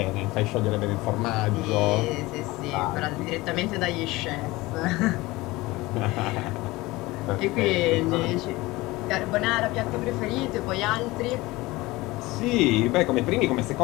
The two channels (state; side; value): quieter; right; 20.6 dB